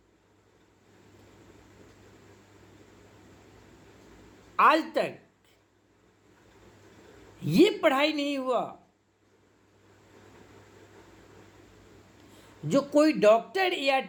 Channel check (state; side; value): identical; both; correlation 1.00